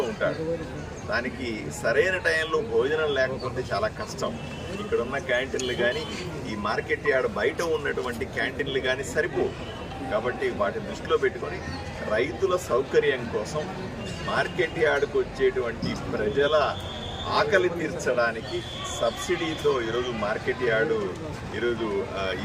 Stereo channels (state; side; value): identical; both; correlation 1.00